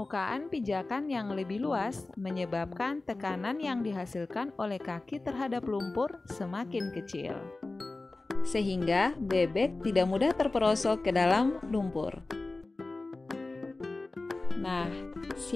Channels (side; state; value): right; quieter; 3.2 dB